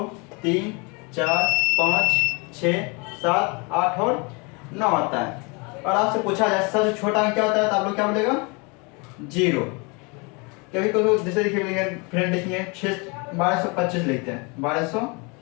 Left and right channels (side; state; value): right; quieter; 30.3 dB